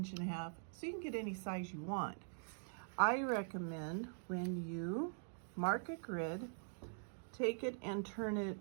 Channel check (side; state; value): left; silent; digital silence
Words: inches. So you can get any size you want. I recommend when you mark a grid, take it and turn